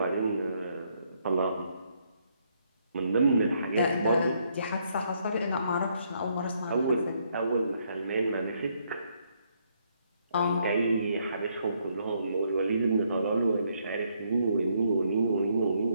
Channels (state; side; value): inverted; both; correlation -0.72